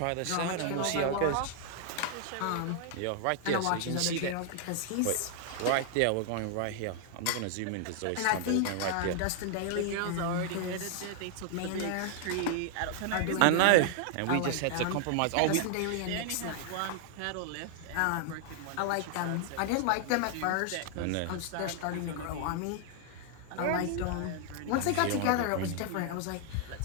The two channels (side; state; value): both; different; correlation 0.00